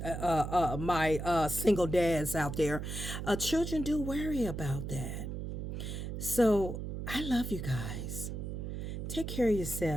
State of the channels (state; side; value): noise; right; hum, 5 dB below the sound